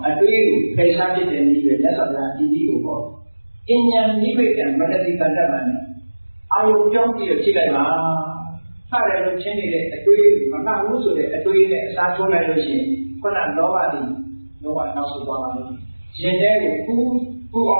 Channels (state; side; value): inverted; both; correlation -1.00